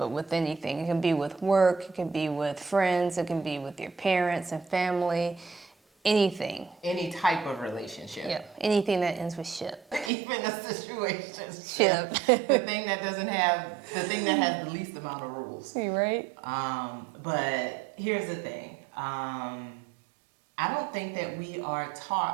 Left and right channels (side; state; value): left; drops out; at 10.1 s